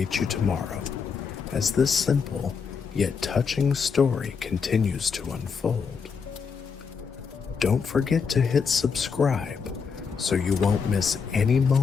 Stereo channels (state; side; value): quieter; right; 5.8 dB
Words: you tomorrow, as this simple yet touching story continues to unfold. Don't forget to hit subscribe so you won't miss any